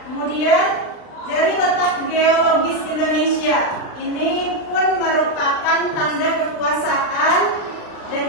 Kemudian dari letak geologis Indonesia, ini pun merupakan tanda kekuasaan dan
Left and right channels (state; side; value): late; right; 39 ms